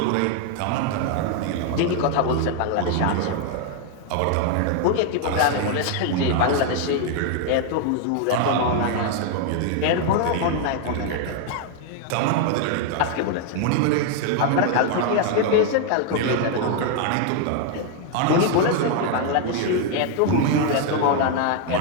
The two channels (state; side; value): different; both; correlation 0.00